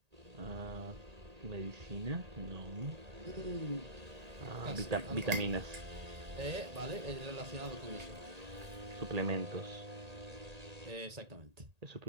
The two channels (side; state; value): left; late; 1.8 ms